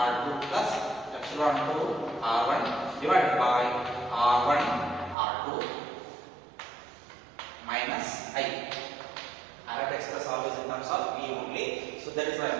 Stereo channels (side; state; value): left; drops out; at 5.2 s